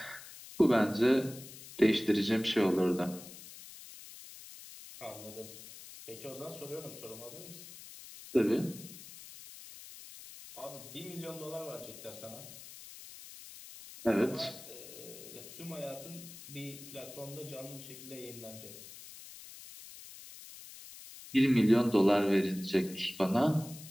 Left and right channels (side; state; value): left; noise; hiss, 15 dB below the sound